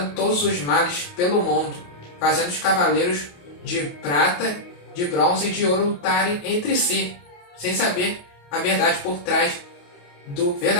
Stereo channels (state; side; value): late; right; 28 ms